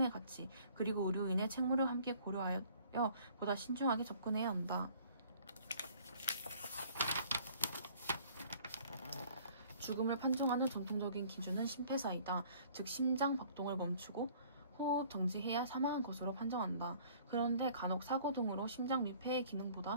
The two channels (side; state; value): both; inverted; correlation -0.55